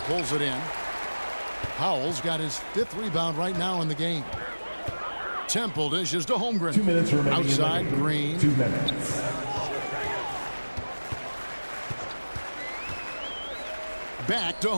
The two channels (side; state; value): both; inverted; correlation -1.00